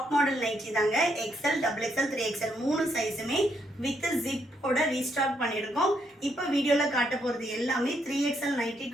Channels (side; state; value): both; normal; correlation 0.76